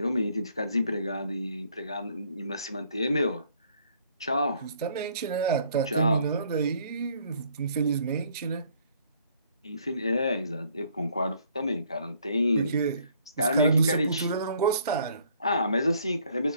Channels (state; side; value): inverted; both; correlation -0.62